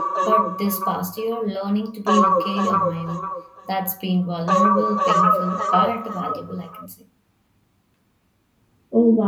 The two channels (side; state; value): both; identical; correlation 1.00